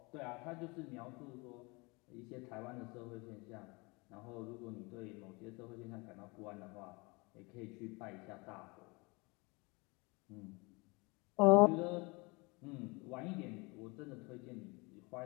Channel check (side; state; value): right; quieter; 27.2 dB